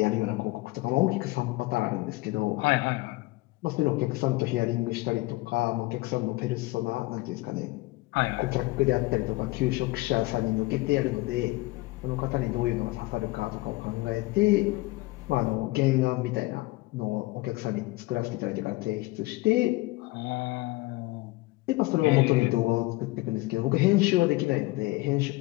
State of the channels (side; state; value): right; quieter; 21.4 dB